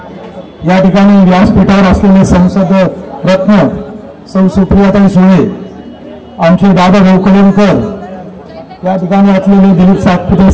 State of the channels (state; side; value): identical; both; correlation 1.00